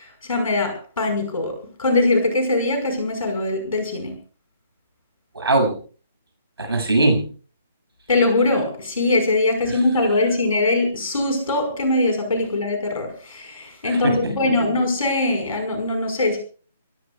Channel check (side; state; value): both; inverted; correlation -0.61